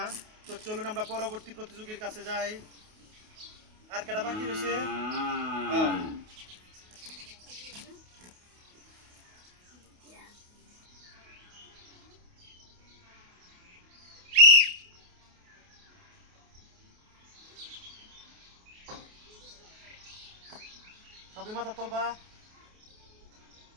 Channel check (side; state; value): left; late; 28 ms